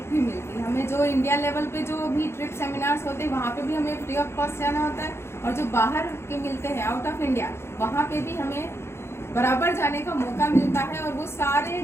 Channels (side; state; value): right; late; 0.12 ms